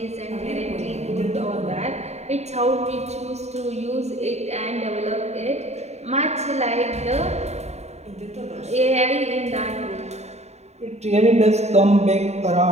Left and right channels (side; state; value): left; late; 0.32 ms